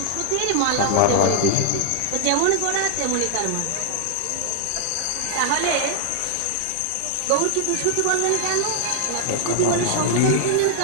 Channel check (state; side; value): different; both; correlation 0.00